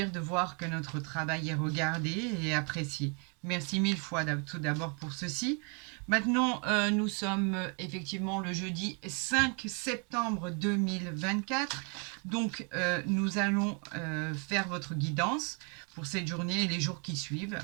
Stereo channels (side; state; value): left; quieter; 36.0 dB